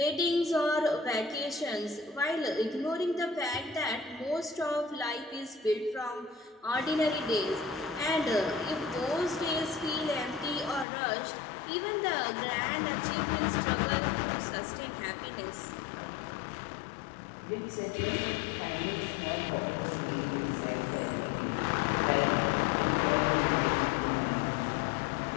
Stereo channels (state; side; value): drops out; right; at 10.9 s